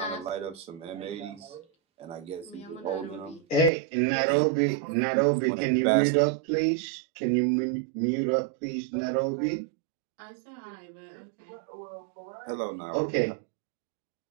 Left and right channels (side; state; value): left; drops out; at 3.7 s